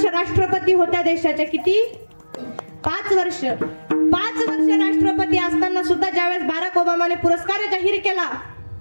राष्ट्रपती होत्या देशाच्या. किती? 5 वर्ष. 5 वर्ष राष्ट्रपती असताना सुद्धा ज्यावेळेस बराक ओबामाने पुरस्कार जाहीर केला,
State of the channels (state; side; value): inverted; both; correlation -1.00